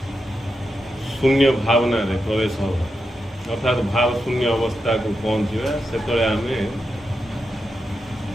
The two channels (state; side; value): normal; both; correlation 0.87